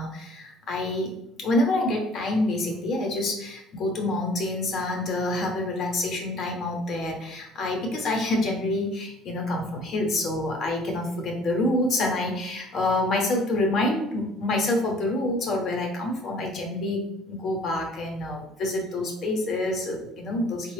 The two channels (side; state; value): both; normal; correlation 0.53